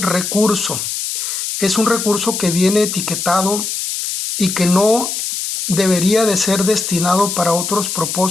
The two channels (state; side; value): noise; left; hiss, 3 dB below the sound